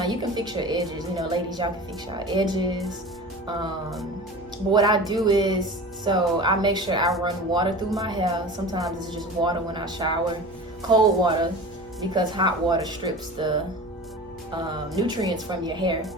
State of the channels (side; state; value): both; normal; correlation 0.35